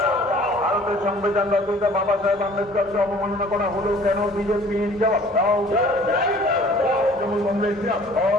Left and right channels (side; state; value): both; normal; correlation 0.51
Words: ভারতের সংবিধান রচয়িতা বাবা সাহেব আম্বেদকরকে অবমাননা করা হলো কেন? বিজেপি জবাব দাও। তৃণমূল কংগ্রেস